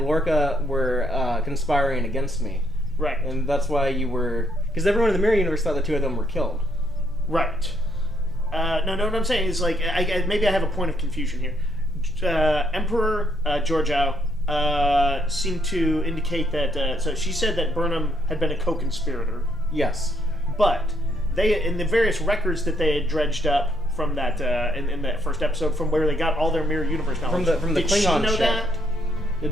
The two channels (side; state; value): both; normal; correlation 0.73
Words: Lorca were conspiring against me. Right. And that's why you were... Because everyone in the mirror universe thought the two of them were killed. Right. No, what I'm saying is, maybe I have a point of confusion here. Emperor Georgiou seemed to indicate that... so she said that Burnham had been a co-conspirator. Yes. But they, in the various records that they had dredged up from that, in that first episode, from where they got all their mirror universe knowledge... From the Klingon ship. Did she know that?